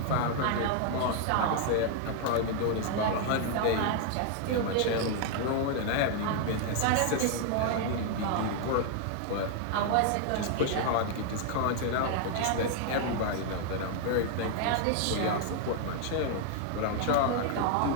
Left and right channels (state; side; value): different; both; correlation 0.00